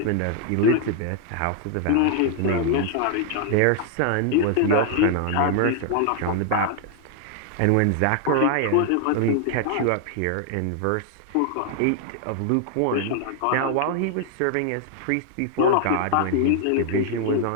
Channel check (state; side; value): different; both; correlation 0.00